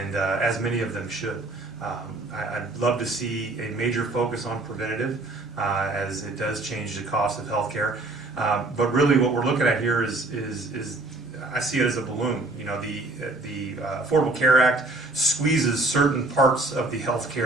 as many of them should. I'd love to see a major focus on preventative, as it does change the cost of healthcare. But really, what we're looking at here is I see it as a balloon. The Affordable Care Act squeezes certain parts of the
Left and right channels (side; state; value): left; quieter; 3.0 dB